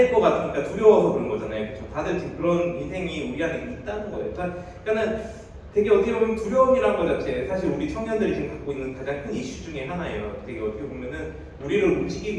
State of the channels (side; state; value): both; identical; correlation 1.00